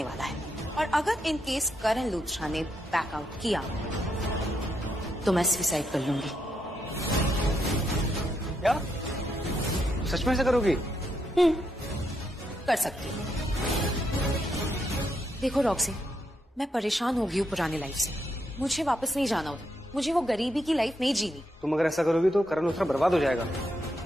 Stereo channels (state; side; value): normal; both; correlation 0.79